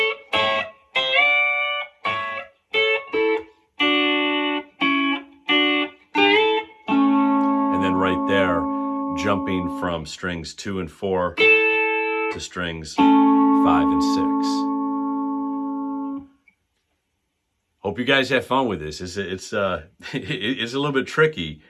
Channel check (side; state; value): both; identical; correlation 1.00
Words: right there, jumping from strings 2 and 4 to strings 5 and 6. Hope you guys have fun with this. It's a little bit tricky,